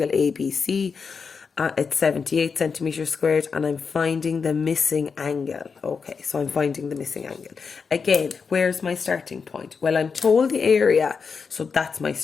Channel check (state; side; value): quieter; right; 5.5 dB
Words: ABC. It's 78 centimeters squared, and I'm finding the missing angle. Okay, so I'm finding the missing angle. Again, where's my starting point? Well, I'm told the area, so that's my